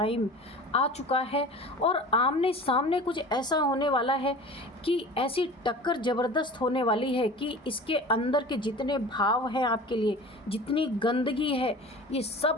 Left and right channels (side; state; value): both; normal; correlation 0.38